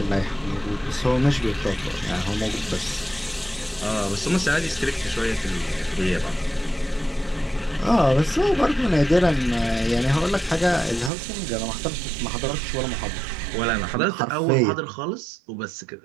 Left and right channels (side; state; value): left; drops out; at 11.1 s